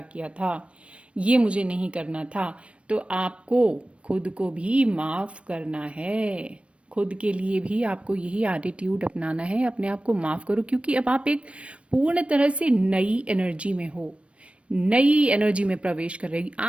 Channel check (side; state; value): left; late; 0.060 ms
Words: किया था, ये मुझे नहीं करना था, तो आपको खुद को भी माफ करना है। खुद के लिए भी आपको यही एटीट्यूड अपनाना है, अपने आप को माफ करो, क्योंकि अब आप एक पूर्ण तरह से नई एनर्जी में हो, नई एनर्जी में प्रवेश कर रही,